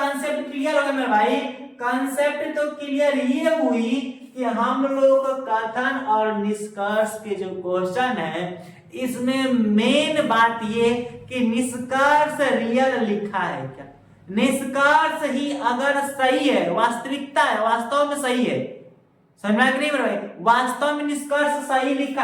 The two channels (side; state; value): both; identical; correlation 1.00